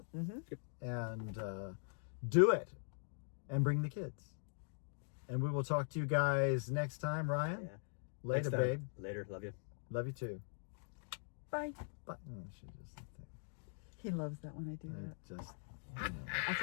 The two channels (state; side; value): silent; right; digital silence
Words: and do it, and bring the kids. And we will talk to you guys next time, Ryan. Yeah. Later, Next time. babe. Later. Love you. Love you too. Bye. But she just, He loves that when I do that. just. That's